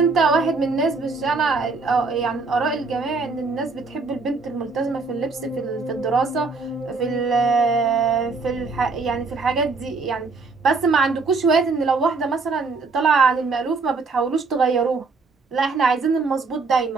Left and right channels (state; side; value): quieter; left; 4.2 dB